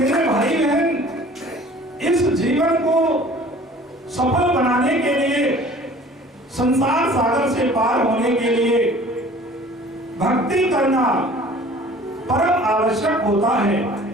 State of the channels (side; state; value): both; normal; correlation 0.48